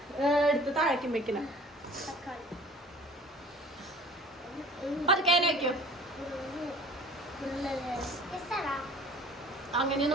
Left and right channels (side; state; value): both; normal; correlation 0.48